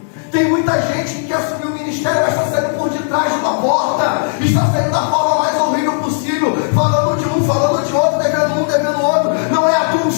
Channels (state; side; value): silent; right; digital silence